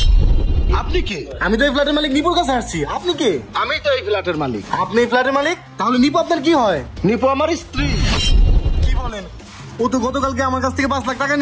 আপনি কে? আমি তো এই ফ্ল্যাটের মালিক, নিপুর কাছে আসছি। আপনি কে? আমি তো এই ফ্ল্যাটের মালিক। আপনি এই ফ্ল্যাটের মালিক? তাহলে নিপু আপনার কি হয়? নিপু আমার স্ত্রী। কি বলেন? ও তো গতকালকে আমার কাছ থেকে 5 লাখ টাকা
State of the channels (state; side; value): identical; both; correlation 1.00